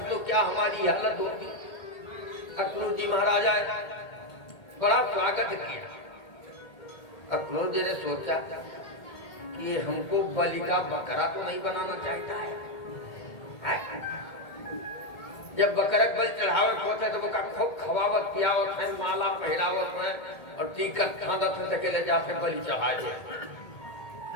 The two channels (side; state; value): right; late; 1.8 ms